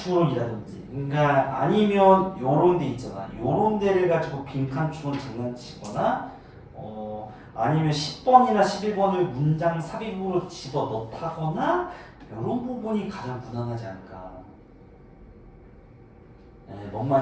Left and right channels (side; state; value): both; identical; correlation 1.00